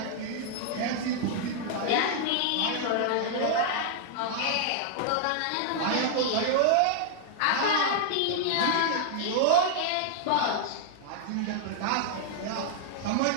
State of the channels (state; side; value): different; both; correlation -0.01